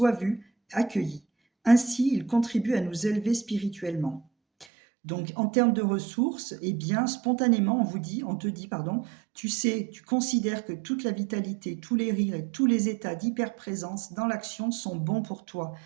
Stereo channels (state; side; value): drops out; left; at 4.7 s